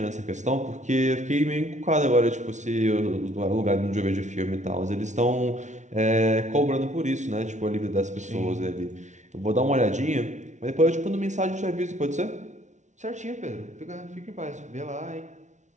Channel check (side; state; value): left; late; 0.35 ms